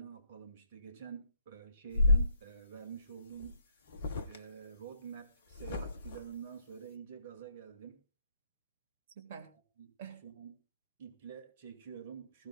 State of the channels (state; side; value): inverted; both; correlation -0.72